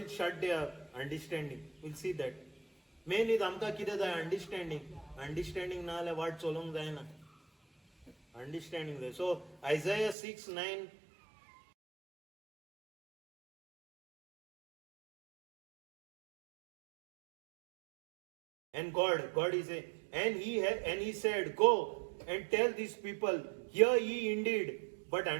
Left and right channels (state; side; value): drops out; left; at 10.2 s